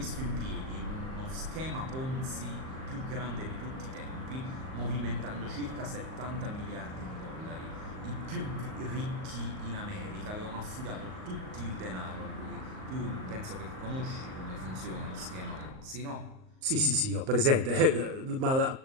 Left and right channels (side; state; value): left; late; 38 ms